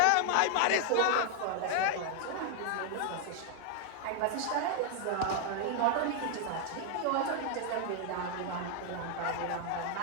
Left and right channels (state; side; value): different; both; correlation 0.00